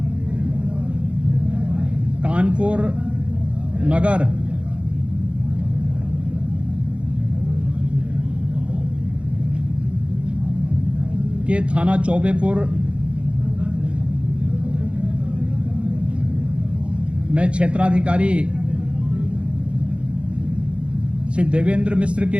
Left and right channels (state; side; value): late; left; 0.059 ms